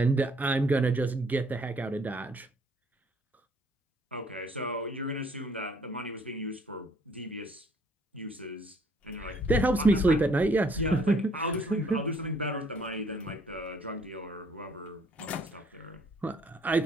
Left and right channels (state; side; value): normal; both; correlation 0.62